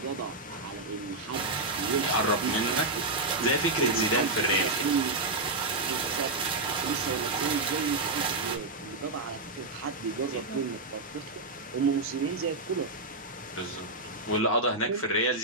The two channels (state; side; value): quieter; left; 3.1 dB